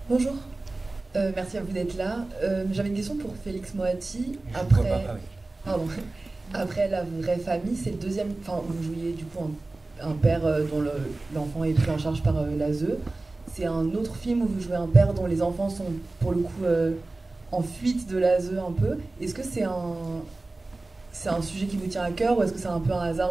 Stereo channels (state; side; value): quieter; left; 3.1 dB